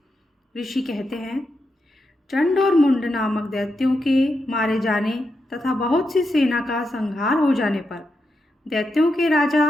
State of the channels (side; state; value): both; normal; correlation 0.85